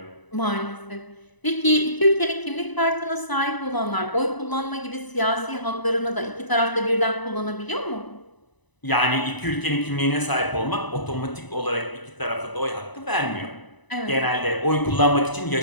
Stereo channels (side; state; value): right; late; 1.0 ms